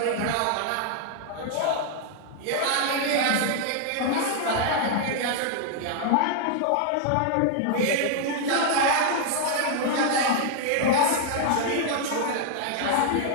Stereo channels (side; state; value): both; different; correlation 0.00